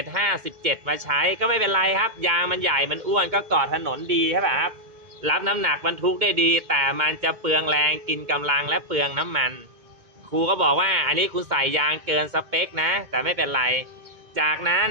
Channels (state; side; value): late; left; 2.2 ms